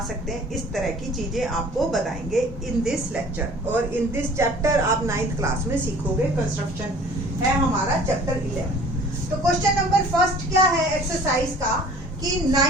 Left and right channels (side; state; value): both; normal; correlation 0.49